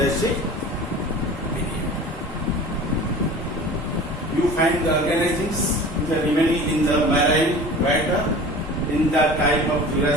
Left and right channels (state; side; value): normal; both; correlation 0.39